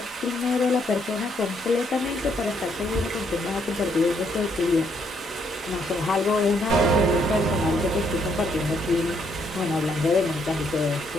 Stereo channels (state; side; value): normal; both; correlation 0.72